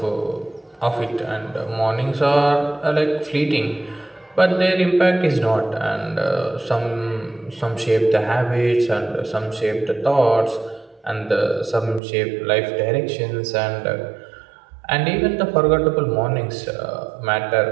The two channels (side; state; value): left; drops out; at 12.0 s